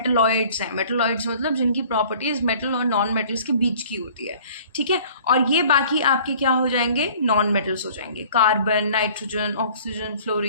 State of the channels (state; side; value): inverted; both; correlation -0.51